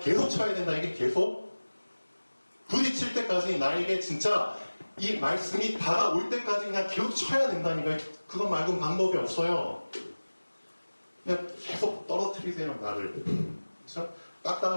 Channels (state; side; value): inverted; both; correlation -1.00